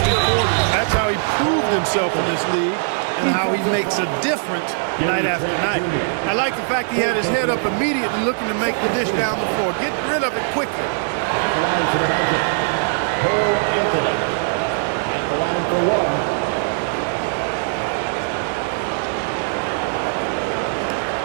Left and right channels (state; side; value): silent; left; digital silence